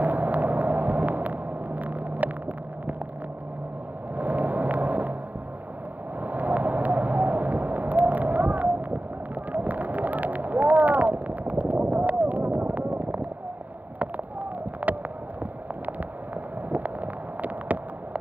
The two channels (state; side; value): late; left; 0.081 ms